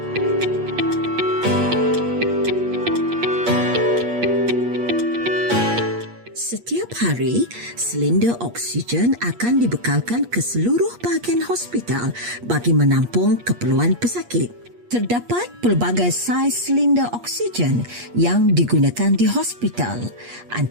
hari, silinder oksigen akan dibekalkan ke seluruh bahagian hospital bagi menampung keperluan pesakit. Terdapat pelbagai saiz silinder oksigen yang digunakan di hospital,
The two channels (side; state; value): left; late; 8.4 ms